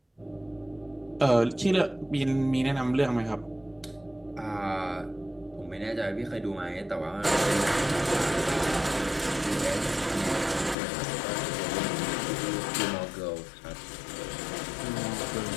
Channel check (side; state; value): right; drops out; at 10.8 s